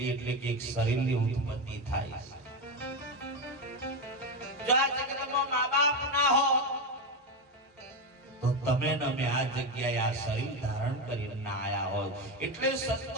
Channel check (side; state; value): both; normal; correlation 0.12